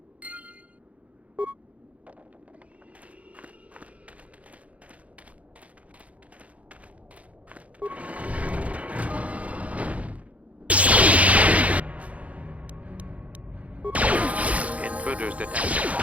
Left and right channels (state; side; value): late; left; 0.066 ms